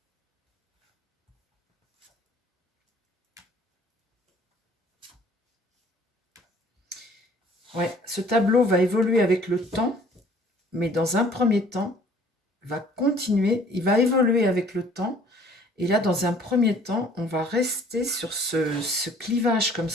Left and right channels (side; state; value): both; normal; correlation 0.55